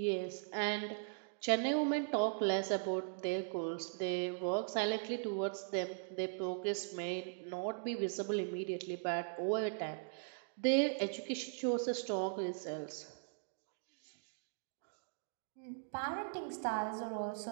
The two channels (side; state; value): left; silent; digital silence